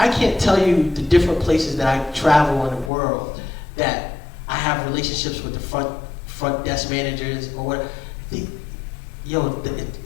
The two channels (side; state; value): right; drops out; at 2.9 s